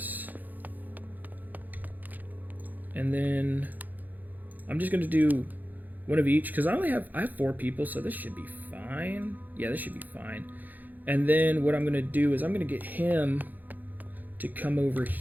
And then I'm just going to do One of each, because I have 4 people, so this should be fine. Yeah, this should be fine. And then what I'm gonna do is I'm gonna get him to come over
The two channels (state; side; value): late; left; 0.084 ms